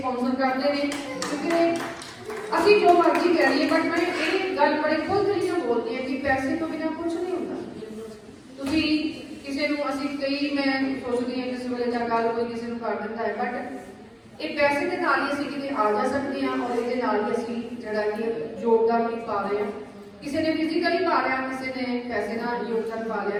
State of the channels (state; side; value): identical; both; correlation 1.00